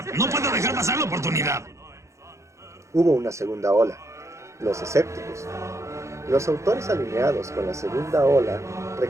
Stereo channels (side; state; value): left; late; 0.14 ms